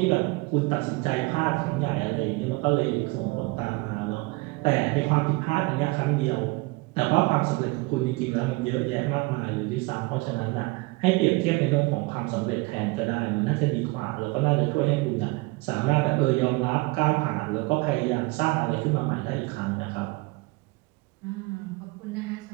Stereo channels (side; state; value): left; quieter; 24.4 dB